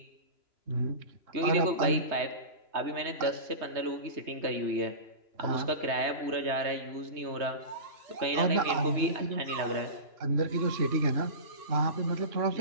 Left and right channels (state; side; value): late; left; 2.9 ms